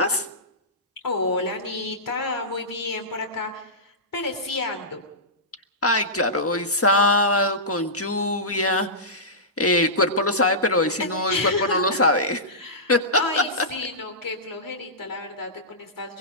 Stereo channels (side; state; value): both; normal; correlation -0.17